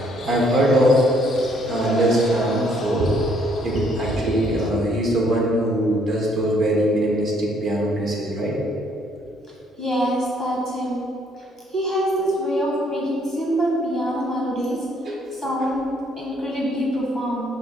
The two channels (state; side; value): normal; both; correlation 0.67